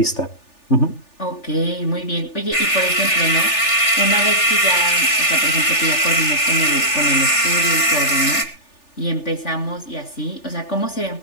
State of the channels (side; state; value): right; late; 3.4 ms